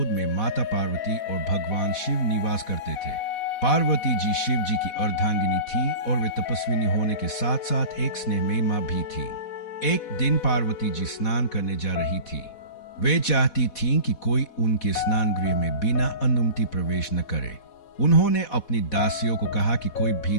में माता पार्वती और भगवान शिव निवास करते थे। पार्वती जी शिव जी की अर्धांगिनी थी और वे तपस्विनी होने के साथ साथ एक स्नेहमयी मां भी थी। एक दिन पार्वती जी स्नान करने जा रही थी। वे चाहती थीं कि कोई उनके स्नान गृह में बिना अनुमति प्रवेश न करे। उन्होंने अपनी दासियों को कहा कि कोई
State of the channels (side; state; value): right; late; 4.1 ms